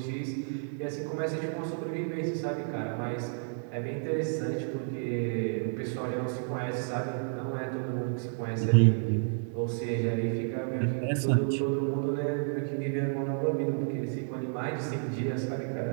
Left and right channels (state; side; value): silent; left; 57 dB below the other